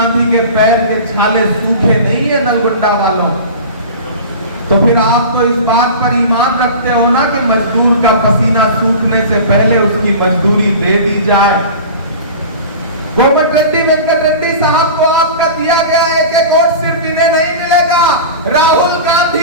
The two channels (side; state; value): both; inverted; correlation -0.34